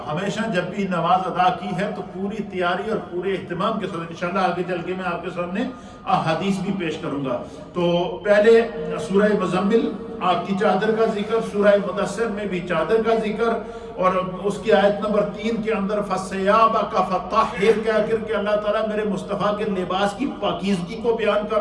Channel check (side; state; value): both; identical; correlation 1.00